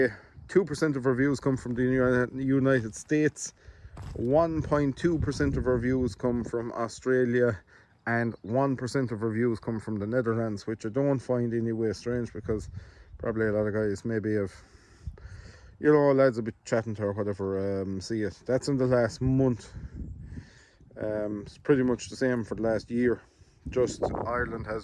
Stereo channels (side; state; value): both; identical; correlation 1.00